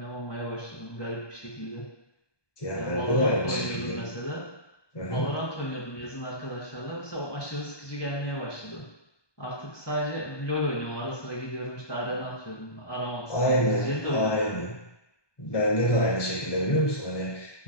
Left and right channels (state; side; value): late; right; 1.2 ms